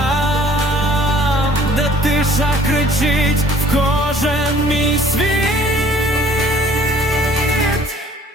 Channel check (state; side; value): normal; both; correlation 0.55